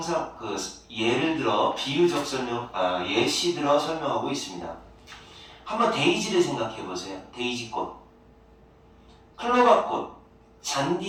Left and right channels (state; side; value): identical; both; correlation 1.00